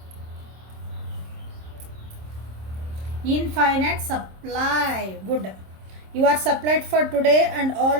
Infinite supply. Good. You are supplied for today and all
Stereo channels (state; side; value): late; left; 26 ms